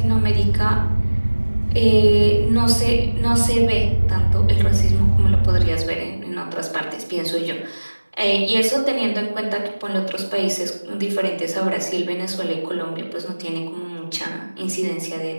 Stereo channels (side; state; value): both; inverted; correlation -1.00